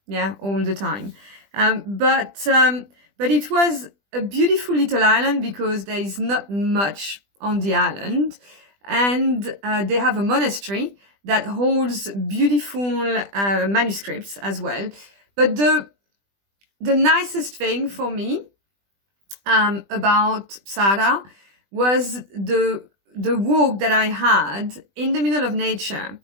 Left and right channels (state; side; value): late; left; 20 ms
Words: Yeah, all the time. But it was a beautiful little island because there is not much on the island. And they have a monastery that holds beautiful manuscripts as well. But the nicest thing for me about Psara was the walk that I had in the middle of nature.